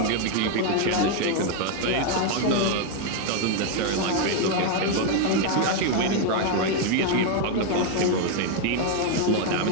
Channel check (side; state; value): both; different; correlation 0.01